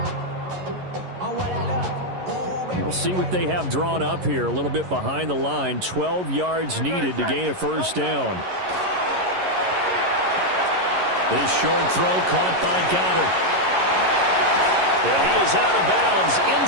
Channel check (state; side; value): late; left; 11 ms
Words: We'll see what they have drawn up here. A little bit behind the line. 12 yards needed to gain a first down. This short throw caught by Goddard. And he is out of bounds